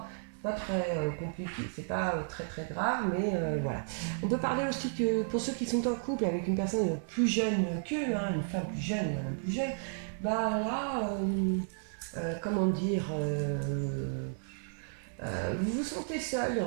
pas très compliqué, c'est pas très très grave, mais voilà. On peut parler aussi que pour ceux qui sont en couple avec une personne plus jeune qu'eux, hein, une femme plus jeune, un homme plus jeune, bah là, comment dire, vous vous sentez seul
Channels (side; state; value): left; silent; 56 dB below the other